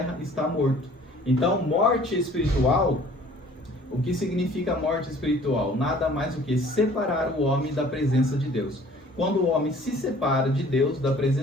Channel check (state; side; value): normal; both; correlation 0.52